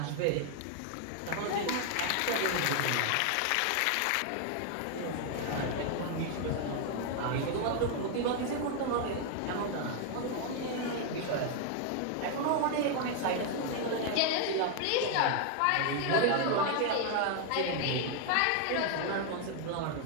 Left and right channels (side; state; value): both; different; correlation 0.00